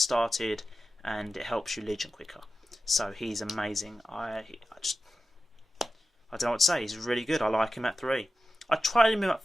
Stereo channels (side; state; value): both; normal; correlation 0.94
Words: and it helps you legion quicker. So he's amazing. I don't know what to say. He's really good. I like him at 3. I tried him at